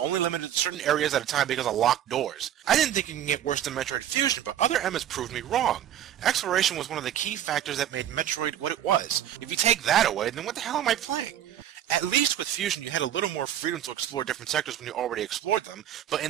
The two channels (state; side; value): quieter; left; 11.0 dB